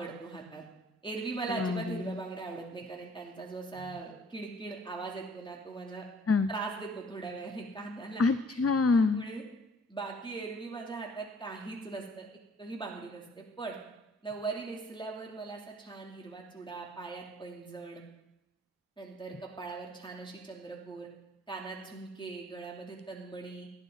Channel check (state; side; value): normal; both; correlation 0.58